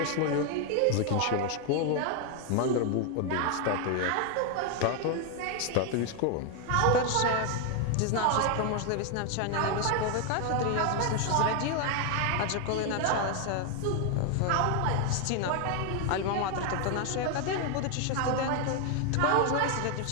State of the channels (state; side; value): different; both; correlation 0.01